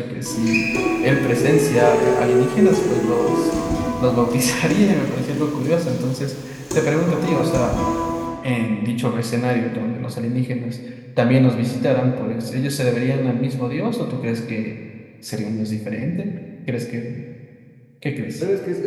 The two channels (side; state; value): both; identical; correlation 1.00